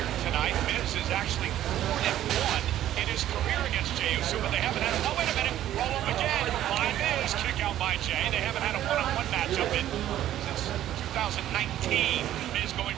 tonight. Miz is actually 4-1 in his career against Jey Uso, but they haven't had oh, wait a minute, roll up again by Miz, kick out by Jey. They haven't had a one-on-one matchup since 2019. Miz going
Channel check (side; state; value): left; quieter; 12.5 dB